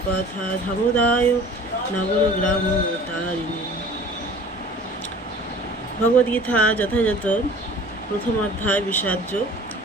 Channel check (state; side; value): normal; both; correlation 0.46